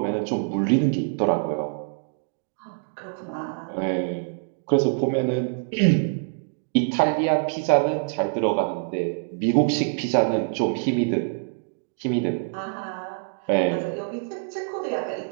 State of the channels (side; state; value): left; silent; digital silence